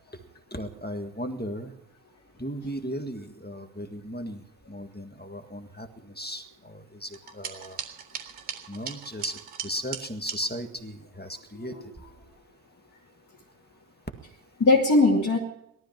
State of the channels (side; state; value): both; normal; correlation 0.12